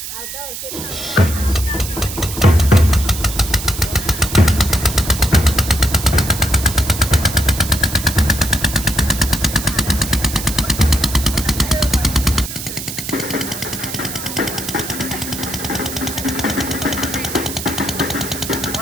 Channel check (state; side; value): noise; right; hiss, 8 dB below the sound